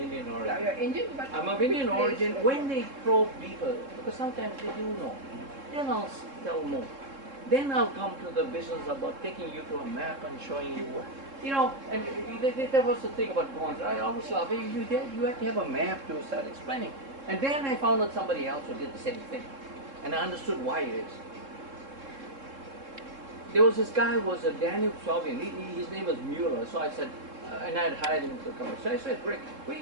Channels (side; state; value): left; late; 3.7 ms